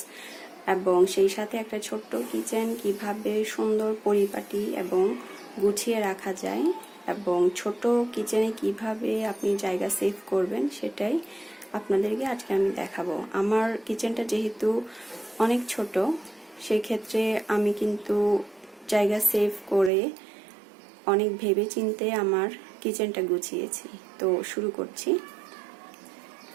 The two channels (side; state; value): left; drops out; at 19.9 s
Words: এবং সেই সাথে একটা ছোট্ট কিচেন কিভাবে সুন্দর পরিপাটি এবং গুছিয়ে রাখা যায় এবং ছোট কিচেনে কিভাবে আপনি জায়গা সেভ করবেন সেটাই আপনাদেরকে আজকে আমি দেখাবো। আমার কিচেনটা যেহেতু অনেক ছোট, সেই ক্ষেত্রে আমি কিন্তু জায়গা সেভ করে অনেক ভেবে চিন্তে আমার কিচেনটা গুছিয়েছি। তো শুরু করছি।